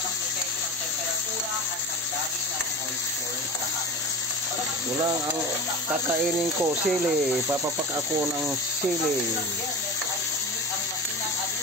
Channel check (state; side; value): normal; both; correlation 0.30